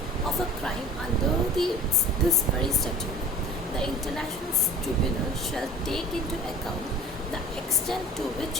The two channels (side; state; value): both; normal; correlation 0.42